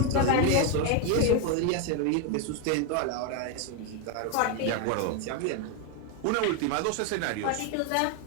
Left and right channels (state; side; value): different; both; correlation 0.01